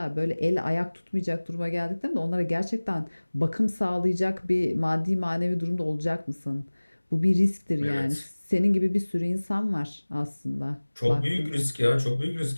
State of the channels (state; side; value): inverted; both; correlation -1.00